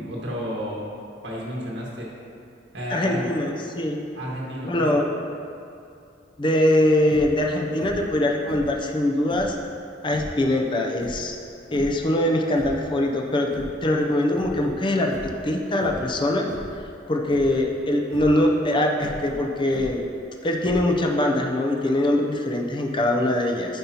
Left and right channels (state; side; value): normal; both; correlation 0.66